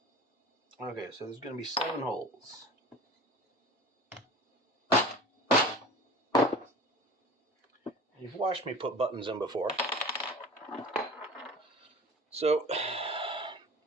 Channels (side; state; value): both; normal; correlation 0.39